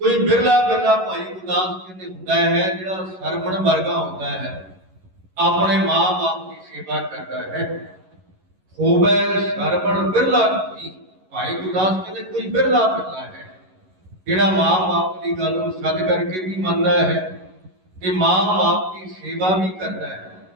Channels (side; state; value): left; late; 11 ms